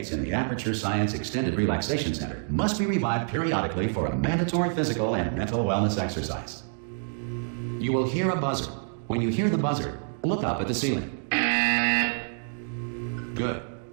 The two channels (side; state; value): left; silent; 60 dB below the other